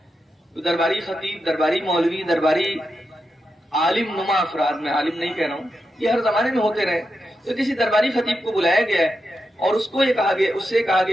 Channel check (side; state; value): both; normal; correlation 0.87